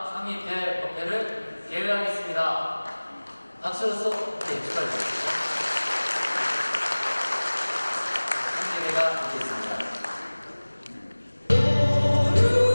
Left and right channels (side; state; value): both; inverted; correlation -1.00